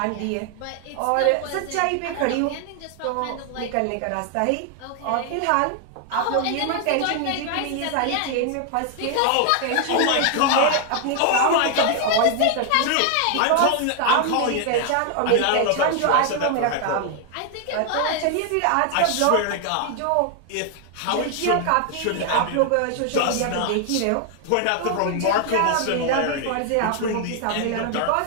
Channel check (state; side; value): different; both; correlation 0.00